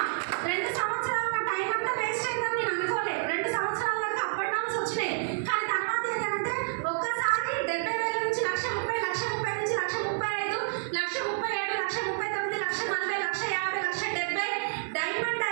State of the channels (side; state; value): left; silent; digital silence